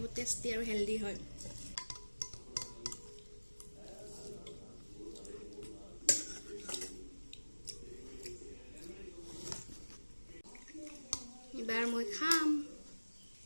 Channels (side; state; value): both; inverted; correlation -1.00